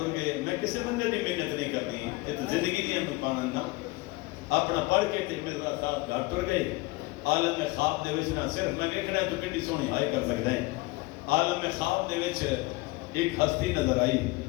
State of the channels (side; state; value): right; quieter; 22.6 dB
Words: گئے میں کسی بندے دی محنت نہیں کرتی یہ تو زندگی دی ہم پانا نہ اپنا پڑھ کے تے مرزا صاحب گھر ٹر گئے عالم خواب دے وچ نہ صرف میں دیکھنا ہے تو کتنی سونی ہائی کر سکتے ہیں عالم خواب دے وچ ایک ہستی نظر آئی